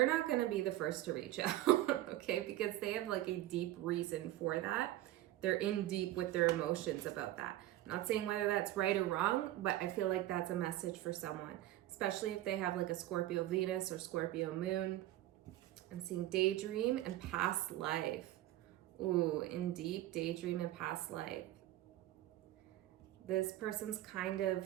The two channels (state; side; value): quieter; left; 15.0 dB